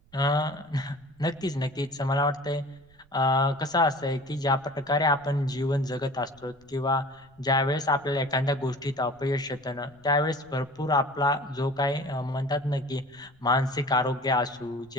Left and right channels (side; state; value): right; noise; rumble, 29 dB below the sound